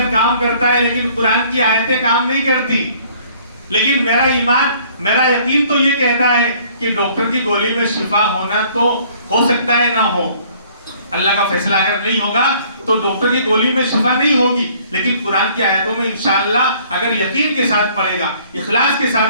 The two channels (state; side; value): inverted; both; correlation -0.58